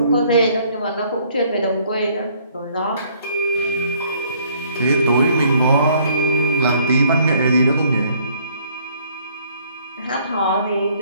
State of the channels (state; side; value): inverted; both; correlation -0.62